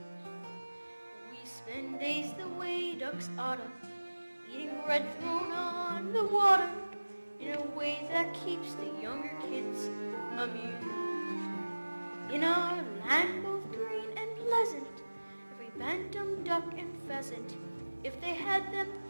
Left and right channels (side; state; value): both; inverted; correlation -1.00